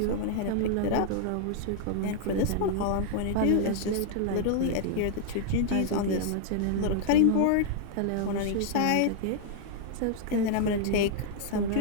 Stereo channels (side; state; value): both; different; correlation -0.01